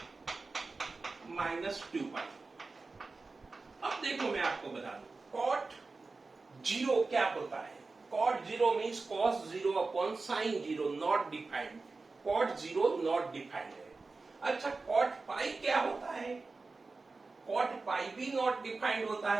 -2 पाई। अब देखो मैं आपको बता दूं, कॉट जीरो क्या होता है। Cot zero means cos zero upon sine zero, not defined. Cot zero not defined है। अच्छा, कॉट पाई क्या होता है? कॉट पाई भी नॉट डिफाइंड होता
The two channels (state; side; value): quieter; left; 3.8 dB